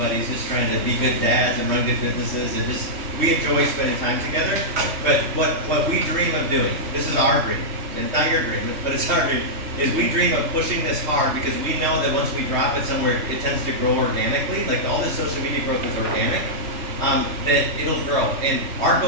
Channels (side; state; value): left; late; 3.1 ms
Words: just trying to be good dads and run good businesses, and just we enjoy spending time together. But what we dream of doing, this is our dream, and not your dream, but it's our dream, is we dream of pushing this hard because we know that once we drop it somewhere, it tends to grow organically. Like all this social media growth is organic. That it'll grow. And our